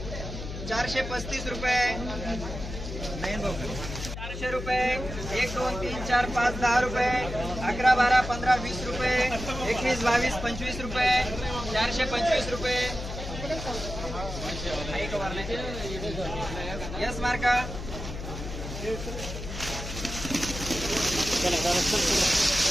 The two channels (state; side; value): noise; left; hum, 8 dB below the sound